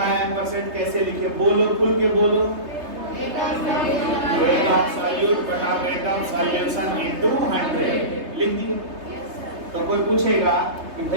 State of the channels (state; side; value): late; left; 3.3 ms